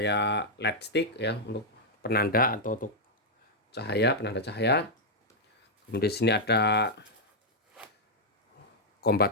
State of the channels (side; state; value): both; normal; correlation -0.03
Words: LED stick ya, untuk penanda atau untuk cahaya, penanda cahaya. Kemudian di sini ada combat